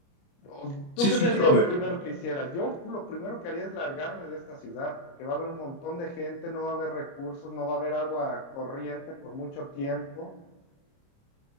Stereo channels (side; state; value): right; late; 29 ms